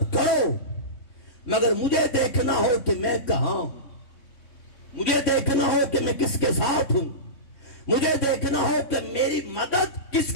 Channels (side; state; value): right; late; 3.5 ms